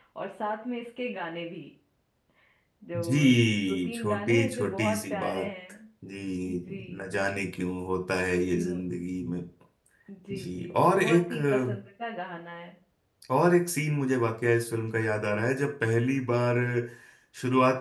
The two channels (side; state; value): both; identical; correlation 1.00